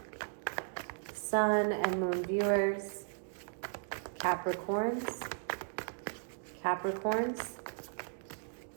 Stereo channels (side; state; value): left; silent; digital silence